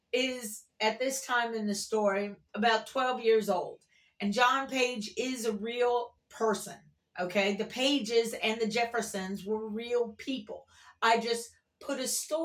is, at this time in the story, about 12 years old. And John Page is a real person, okay? The Pages and the Jeffersons were real people. I just put a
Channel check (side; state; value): both; identical; correlation 1.00